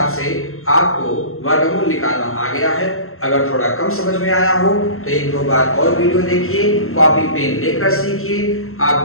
से आपको वर्गमूल निकालना आ गया है। अगर थोड़ा कम समझ में आया हो तो 1-2 बार और वीडियो देखिए, कॉपी पेन लेकर सीखिए। आप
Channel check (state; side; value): late; right; 0.62 ms